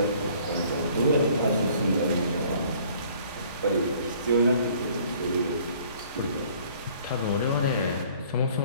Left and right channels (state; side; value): inverted; both; correlation -0.56